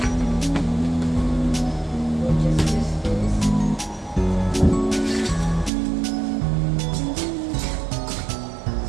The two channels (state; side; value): drops out; left; at 5.7 s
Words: We'll just use this.